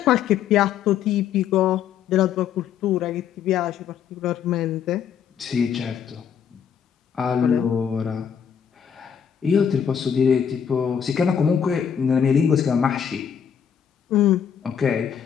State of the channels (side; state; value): right; quieter; 8.0 dB